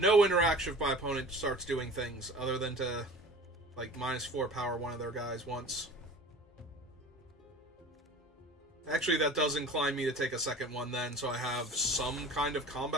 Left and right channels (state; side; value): normal; both; correlation 0.40